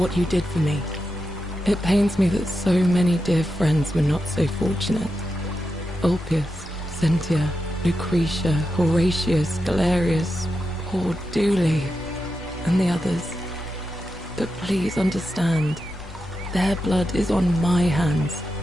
you did for me. It pains me that so many dear friends were not so fortunate. Ulpius, Cynthia, Lucretia, Horatius, Galerius, poor Dooley, and the others. But please understand, their blood is on my hands,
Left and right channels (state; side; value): normal; both; correlation 0.88